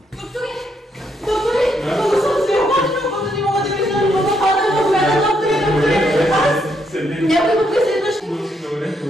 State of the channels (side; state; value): both; normal; correlation 0.76